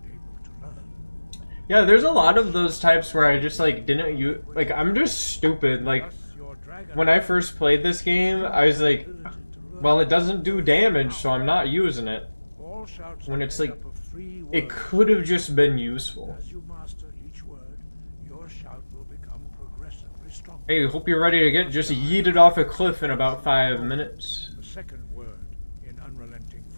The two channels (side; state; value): both; inverted; correlation -1.00